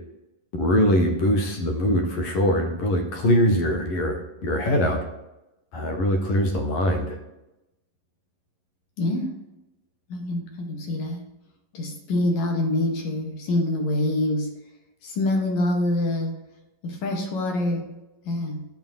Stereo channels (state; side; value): late; right; 11 ms